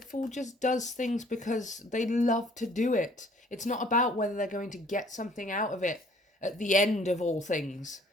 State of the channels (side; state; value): both; normal; correlation 0.57